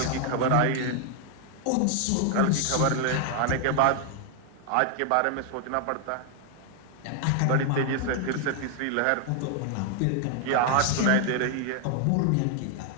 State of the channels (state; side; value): different; both; correlation 0.00